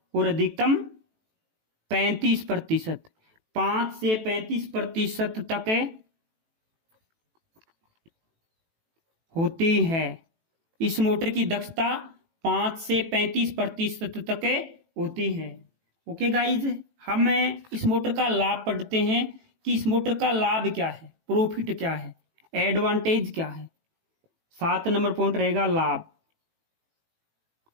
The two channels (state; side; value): late; left; 18 ms